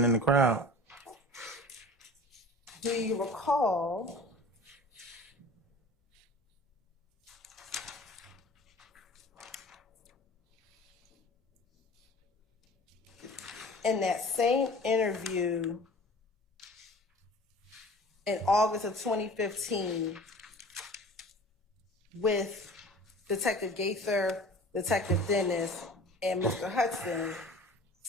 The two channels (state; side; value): normal; both; correlation 0.42